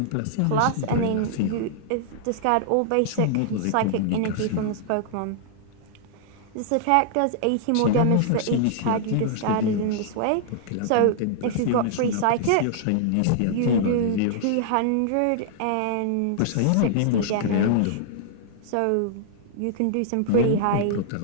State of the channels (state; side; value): different; both; correlation -0.01